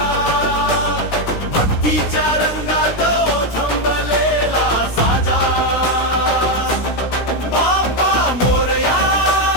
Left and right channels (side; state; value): right; late; 16 ms